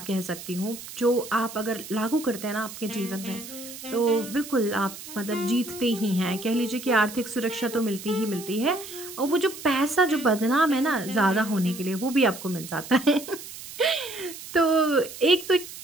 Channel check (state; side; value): noise; right; hiss, 13 dB below the sound